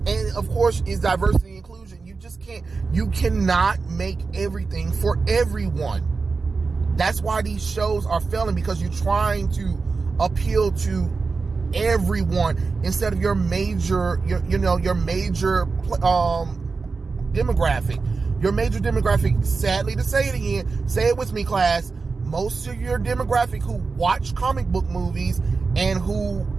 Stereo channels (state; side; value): quieter; left; 4.4 dB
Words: of course, is diversity and inclusion. You just You cannot make everything for everyone. That's why these shows are failing, because you're trying to appeal to everyone instead of your major demographic. Your major demographic, sadly to say it again, say it with me, class, most of your demographic who watch comic book movies and who